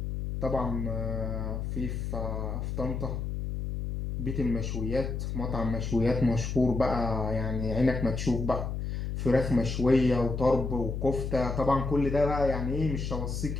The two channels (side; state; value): left; noise; hum, 3 dB below the sound